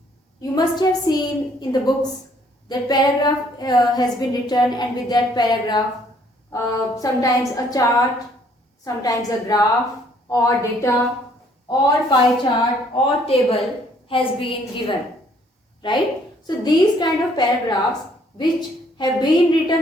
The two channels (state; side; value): normal; both; correlation 0.63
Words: you must have seen in the books that paragraph has been written, and with that paragraph sometimes a chart, sometimes a graph or data or pie chart or table has been given, right? So these kind of paragraphs which have been